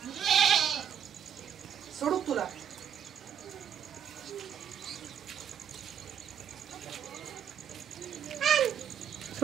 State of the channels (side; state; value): left; quieter; 8.4 dB